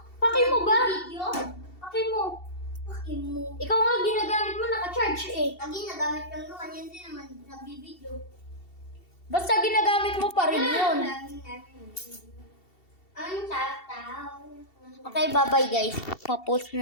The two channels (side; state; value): right; late; 2.7 ms